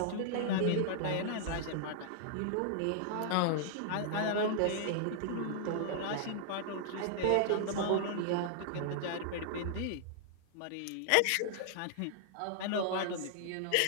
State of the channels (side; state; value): both; different; correlation -0.01